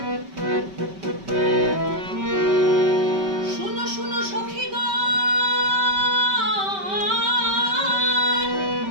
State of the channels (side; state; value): left; late; 5.2 ms